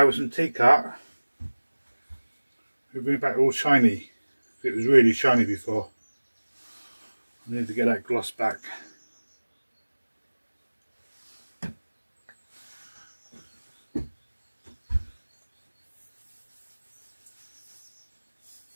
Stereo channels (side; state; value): both; inverted; correlation -1.00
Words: with some T-cut, we'll bring it back all shiny. It was really shiny before. I need to get that gloss back.